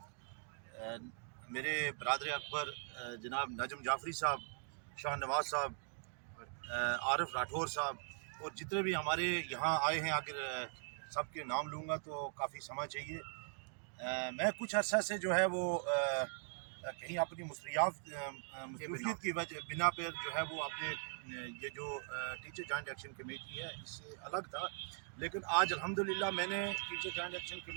मेरे बरदर अकबर जनाब नजम जाफरी साहब, शाह नवाज साहब, आरिफ राठौर साहब और जितने भी हमारे यहाँ आए हैं। अगर सबके नाम लूँगा तो काफ़ी समय चाहिए। मैं कुछ अर्सा से जो है वो कहीं अपनी मसरूफियत की वजह बिना पर जो है वो अपने ये जो टीचर जॉइंट एक्शन कमेटी है इससे अलग था। लेकिन आज अल्हम्दुलिल्लाह मैंने टीचर जॉइंट एक्शन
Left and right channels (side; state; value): left; silent; 51 dB below the other